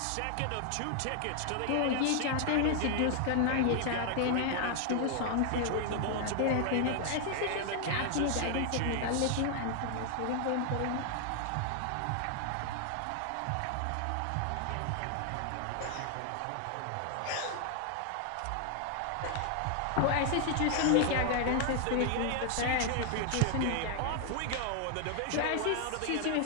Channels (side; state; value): both; different; correlation 0.00